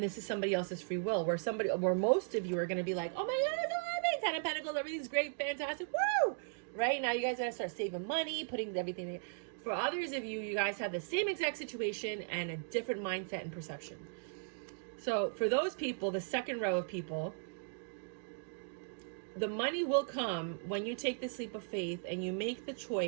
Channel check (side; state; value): left; silent; digital silence